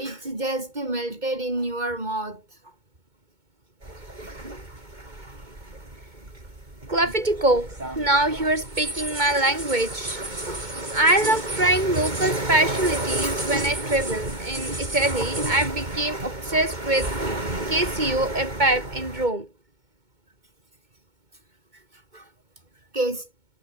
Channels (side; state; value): left; late; 2.2 ms